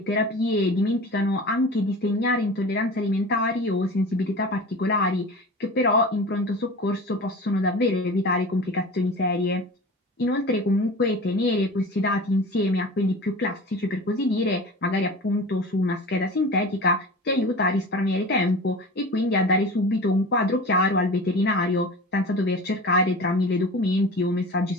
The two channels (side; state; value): both; normal; correlation 0.35